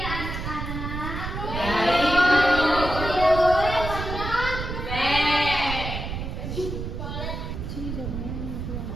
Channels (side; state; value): right; noise; rumble, 5 dB below the sound